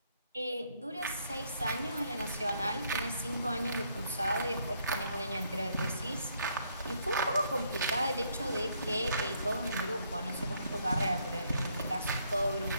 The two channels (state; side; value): inverted; both; correlation -0.71